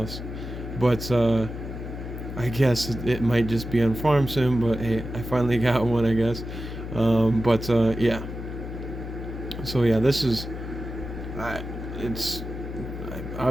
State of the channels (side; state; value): left; noise; hum, 8 dB below the sound